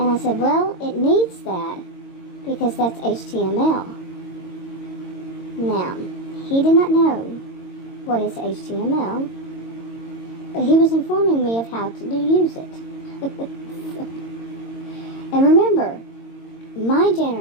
I said, well, it needs that, because that's HTML. Now, he did not know what is HTML, but he was informing me of how to use it. And remember, my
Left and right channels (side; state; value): right; late; 22 ms